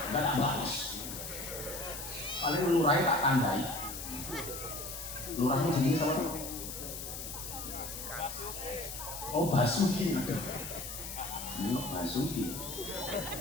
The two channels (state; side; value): noise; left; hiss, 8 dB below the sound